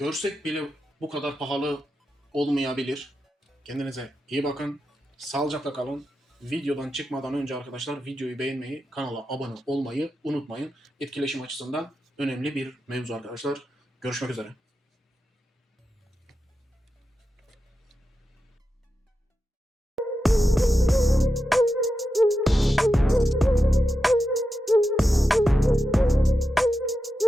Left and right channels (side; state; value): both; normal; correlation 0.89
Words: bile bu kadar pahalı olmayabilir. Kendinize iyi bakın. Sağlıcakla kalın. Videodan çıkmadan önce arkadaşlar videoyu beğenmeyi, kanala abone olmayı unutmayın. Etkileşim açısından önemli bir mevzu arkadaşlar. Görüşmek üzere.